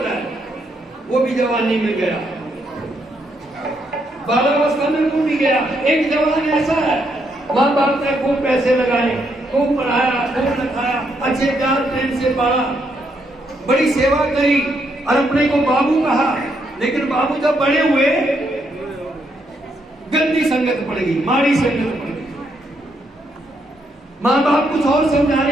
है। वो भी जवानी में गया, बालावस्था में वो भी गया। एक जवान ऐसा है, माँ बाप ने खूब पैसे लगाए, खूब पढ़ाया, खूब लिखाया, अच्छे प्यार प्रेम से पाला, बड़ी सेवा करी और अपने को बाबू कहा। लेकिन बाबू जब बड़े हुए गंदी संगत पड़ गई, माड़ी संगत पड़ गई। माँ बाप कुछ और समझा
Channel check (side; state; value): both; normal; correlation 0.76